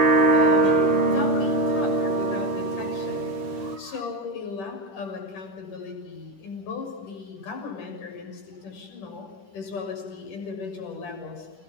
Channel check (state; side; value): late; right; 10 ms